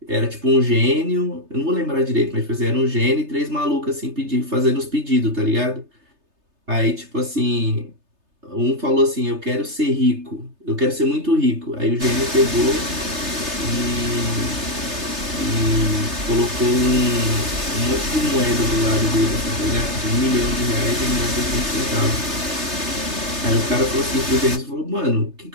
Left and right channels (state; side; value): late; left; 3.3 ms